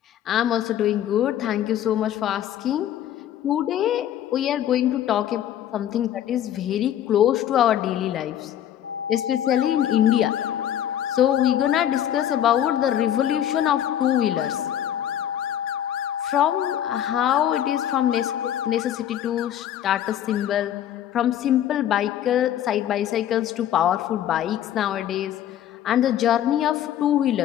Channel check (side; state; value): right; quieter; 10.9 dB